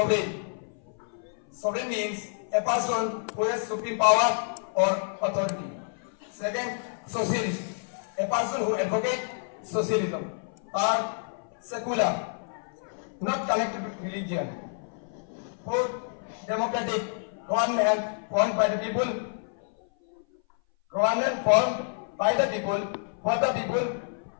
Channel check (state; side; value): silent; right; 57 dB below the other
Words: Sovereign means a person who has supreme power or authority. Second, socialist, a person who advocates socialism. Third, secular, not connected with religion. Fourth, democratic, government formed by the people. Government formed by the people, for the people,